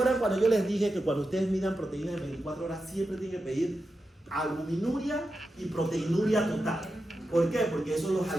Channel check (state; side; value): normal; both; correlation 0.90